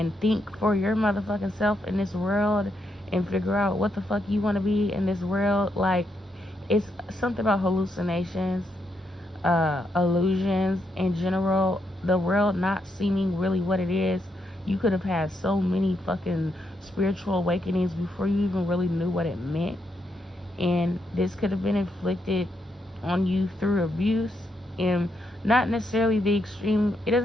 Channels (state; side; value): normal; both; correlation 0.80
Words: think for your motherfucking self in this world and figure out what the fuck you want to be in this world? Like, it's something about hallucinations, illusions in general, the world not seeming really what it is. You could have had so many fucking spiritual awakenings before you even really knew what it meant. And this could have been inflicted on you through abuse, and not necessarily the extreme. It